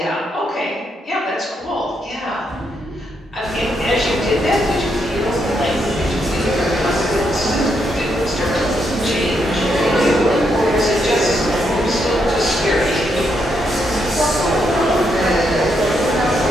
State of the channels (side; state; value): both; normal; correlation 0.78